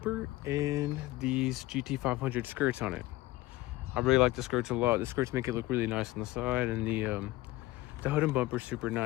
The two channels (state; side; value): quieter; right; 18.4 dB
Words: and these GT500 skirts on it. I really like the skirts a lot. The skirts make it look really nice on the side, and the hood and bumper is super